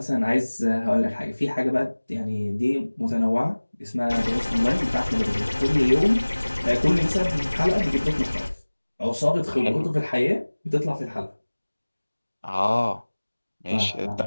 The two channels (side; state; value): both; inverted; correlation -1.00